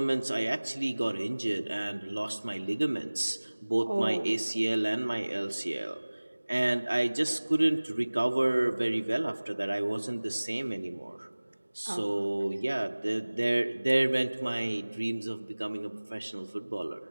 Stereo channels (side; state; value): both; inverted; correlation -1.00